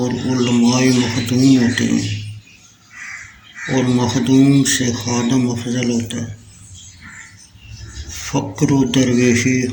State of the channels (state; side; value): identical; both; correlation 1.00